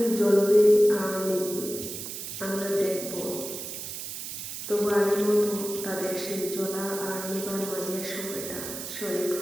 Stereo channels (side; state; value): right; noise; hiss, 7 dB below the sound